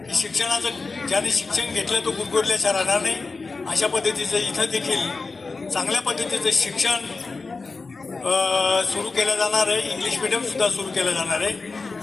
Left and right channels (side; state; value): right; quieter; 4.0 dB